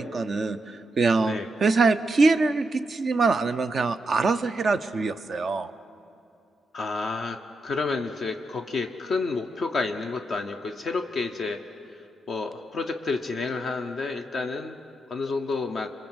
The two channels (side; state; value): both; normal; correlation 0.84